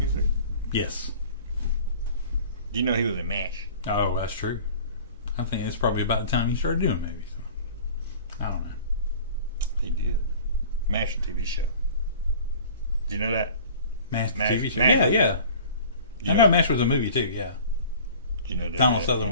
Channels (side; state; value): both; inverted; correlation -0.44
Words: Yes. Do you know he was in MASH? Oh, that's true. I think it's probably about the time he started doing movies. I don't know. He did. MASH TV show. Do you know that? MASH MASH, TV show. MASH. Yeah. You I know, know MASH was a movie too. Yeah. you know that, Donald